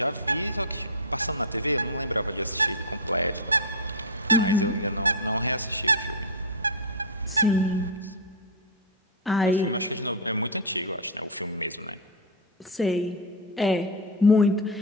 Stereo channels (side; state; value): both; normal; correlation -0.02